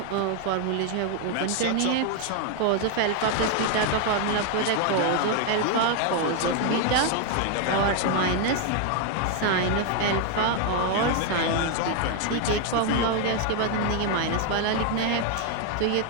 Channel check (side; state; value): both; different; correlation 0.01